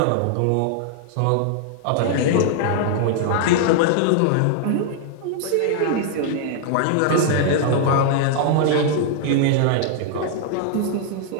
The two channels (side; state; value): both; different; correlation 0.00